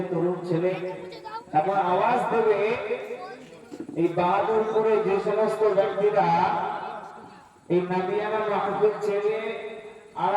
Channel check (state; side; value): identical; both; correlation 1.00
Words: তরুণ ছেলে এখন আওয়াজ দেবে। এই বাহাদুরপুরে যে সমস্ত ব্যক্তিরা এই নবিয়ানা মাহফিল ছেড়ে